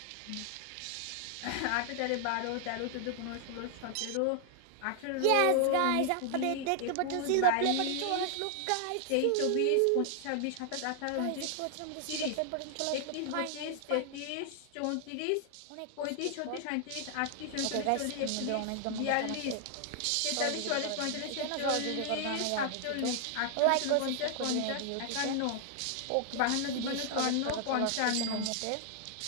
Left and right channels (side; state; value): both; different; correlation 0.00